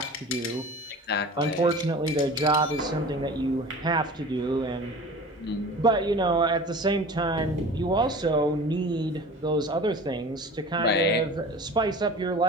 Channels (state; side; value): normal; both; correlation 0.38